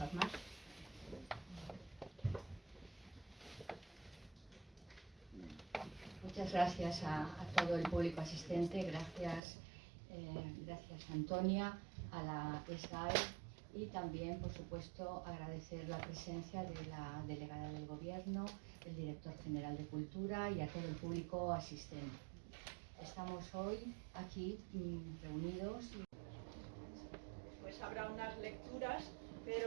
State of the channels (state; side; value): drops out; left; at 9.4 s